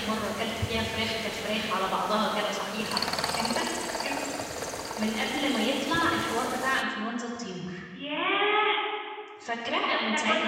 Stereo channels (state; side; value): identical; both; correlation 1.00